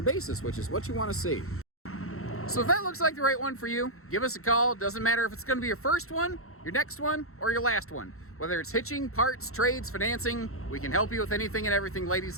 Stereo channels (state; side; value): late; right; 0.63 ms